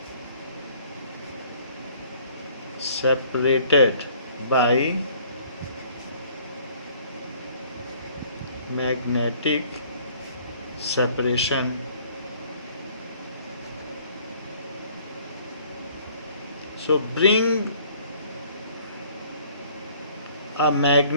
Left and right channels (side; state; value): both; inverted; correlation -0.56